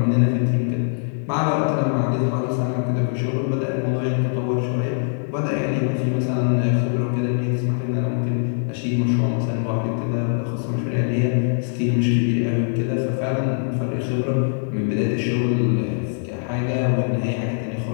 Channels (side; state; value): right; silent; digital silence